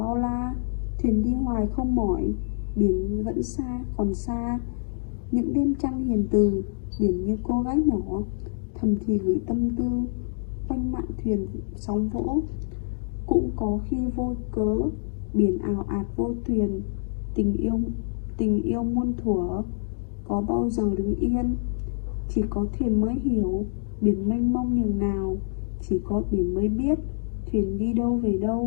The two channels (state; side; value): silent; right; digital silence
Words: la, thuyền đi hoài không mỏi, biển vẫn xa còn xa. Những đêm trăng hiền từ, biển như cô gái nhỏ thầm thì gửi tâm tư, quanh mạn thuyền sóng vỗ. Cũng có khi vô cớ, biển ào ạt vô thuyền, tình yêu muôn thuở, có bao giờ đứng yên. Chỉ có thuyền mới hiểu biển mênh mông nhường nào, chỉ có biển mới biết thuyền đi đâu về